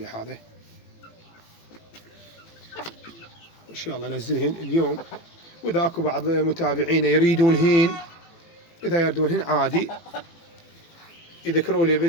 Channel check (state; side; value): late; right; 18 ms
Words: هذا، ان شاء الله انزلهن اليوم. واذا اكو بعض متابعينا يريدونهن، اذا يردونهن عادي يذكروا لي